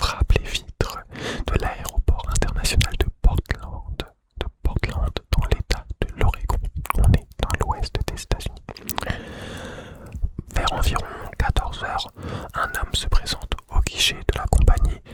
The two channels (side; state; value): both; identical; correlation 1.00